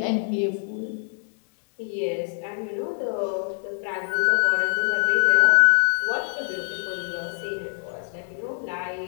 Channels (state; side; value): silent; right; 62 dB below the other